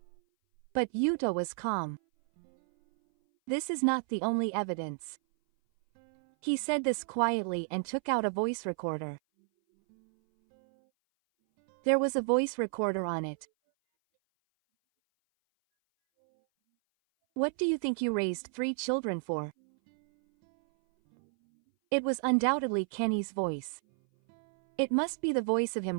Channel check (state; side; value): silent; left; 57 dB below the other